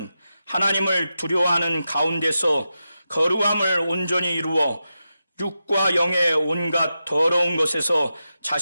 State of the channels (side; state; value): both; inverted; correlation -0.90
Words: 하나님을 두려워하는 가운데서 거룩함을 온전히 이루어 육과 영의 온갖 더러운 것에서